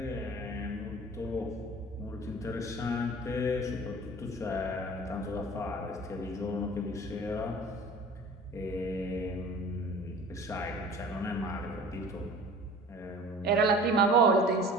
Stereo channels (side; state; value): both; normal; correlation 0.43